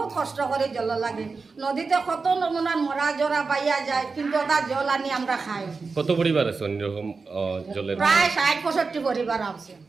কষ্ট করে জল লাগে। নদীতে কত নমুনার মরা জরা পাইয়া যায়, কিন্তু ওটা জল আনি আমরা খাই। কত পরিবার আছে অন্যরকম জলের? প্রায় 60-65 পরিবার আছে।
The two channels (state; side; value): quieter; left; 4.4 dB